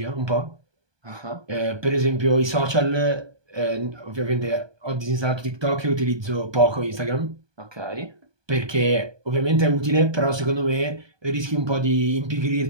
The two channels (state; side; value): late; left; 1.2 ms